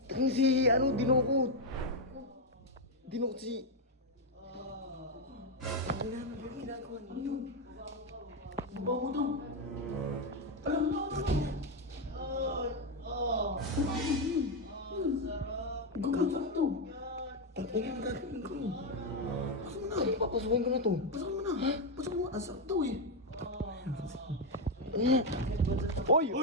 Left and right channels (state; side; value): normal; both; correlation 0.04